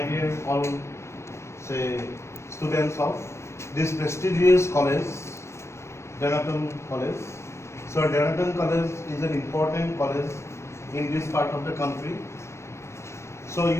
dear all students of this prestigious college, Denaton College. So Denaton College is an important college in this part of the country. So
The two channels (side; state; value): right; late; 0.13 ms